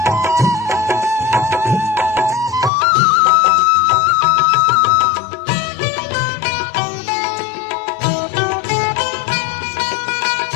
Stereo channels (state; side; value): drops out; right; at 2.7 s